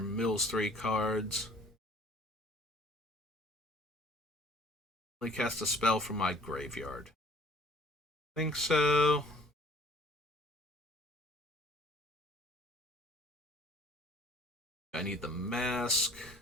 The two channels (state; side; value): normal; both; correlation 0.54